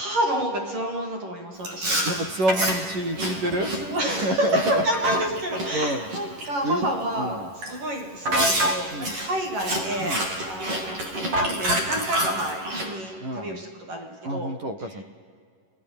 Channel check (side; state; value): left; late; 11 ms